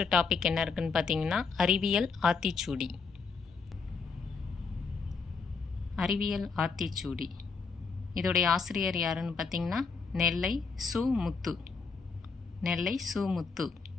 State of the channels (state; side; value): quieter; right; 5.0 dB